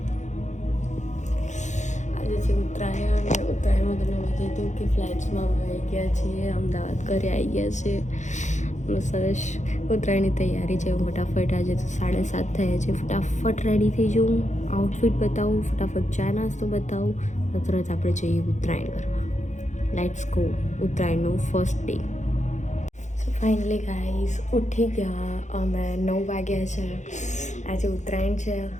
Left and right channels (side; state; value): right; late; 0.35 ms